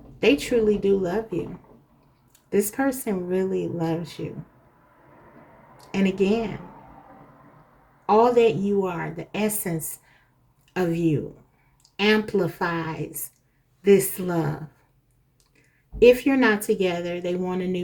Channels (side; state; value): both; identical; correlation 1.00